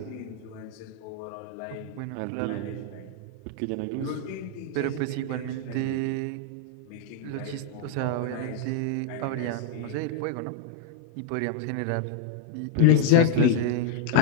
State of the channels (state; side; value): different; both; correlation 0.00